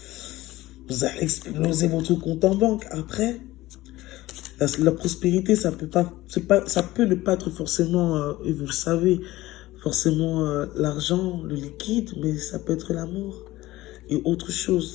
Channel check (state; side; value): quieter; right; 17.5 dB